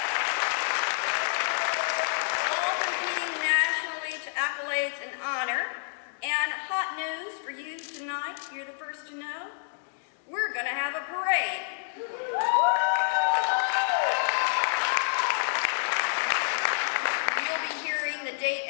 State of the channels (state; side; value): silent; right; digital silence